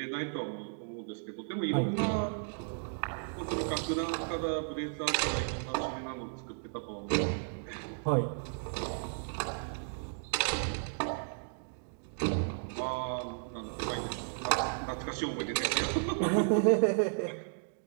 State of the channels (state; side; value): silent; left; digital silence